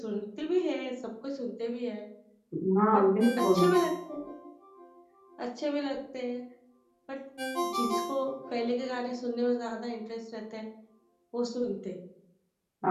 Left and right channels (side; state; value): both; identical; correlation 1.00